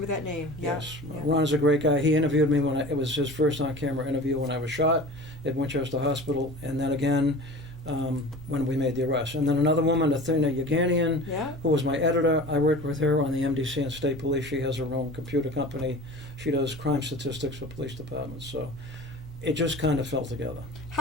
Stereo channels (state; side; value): normal; both; correlation 0.38